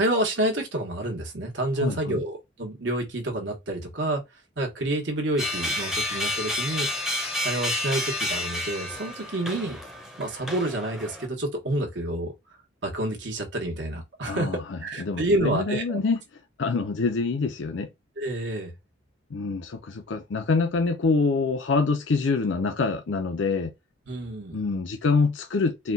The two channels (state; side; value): normal; both; correlation 0.39